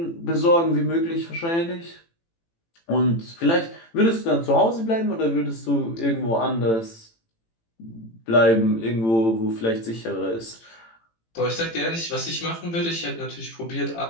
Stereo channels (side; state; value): right; late; 18 ms